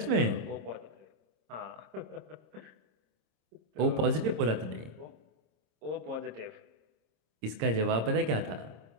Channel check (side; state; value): left; late; 26 ms